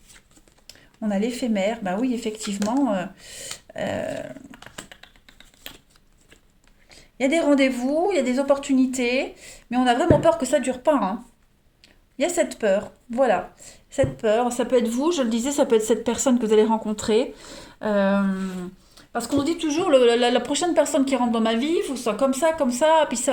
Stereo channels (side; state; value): both; identical; correlation 1.00